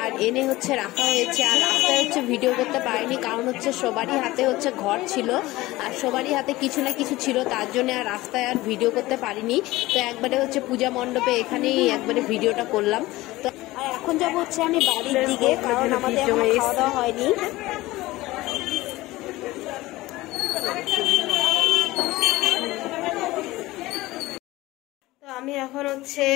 আর এনে হচ্ছে রাখা হয়েছে। আর রাস্তায় হচ্ছে ভিডিও করতে পারিনি, কারণ হচ্ছে সবারই হাতে হচ্ছে ঘট ছিল, আর সবারই হাতে কিছু না কিছু ছিল, তার জন্য আর রাস্তায় আর ভিডিও করতে পারিনি। তো একবারে হচ্ছে পূজা মণ্ডপে এখানেই একবারে ভিডিওটা করলাম। তো আর এখন যাবো হচ্ছে আমি বাড়ির দিকে, কারণ আমাদের খাওয়া দাওয়া হয়নি। আমি এখন হচ্ছে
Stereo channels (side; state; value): right; quieter; 18.6 dB